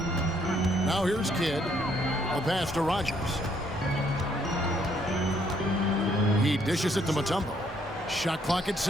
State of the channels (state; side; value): normal; both; correlation 0.69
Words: Now here's Kidd. A pass to Rogers. He dishes it to Mutombo. Shot clock at